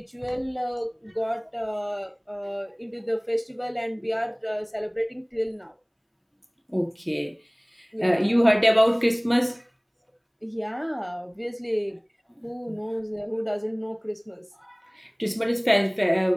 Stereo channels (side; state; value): both; identical; correlation 1.00